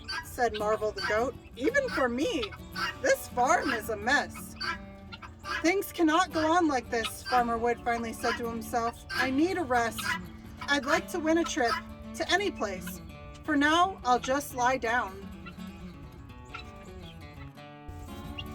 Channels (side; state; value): both; identical; correlation 1.00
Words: said Marvel the goat, "even for me. This farm is a mess." "Things cannot go on like this," Farmer Wood finally said to himself. "I need a rest. I'd like to win a trip to any place. For now, I'll just lie down."